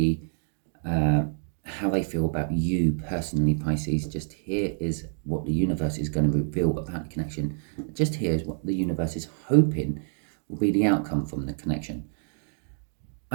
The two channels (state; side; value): silent; left; digital silence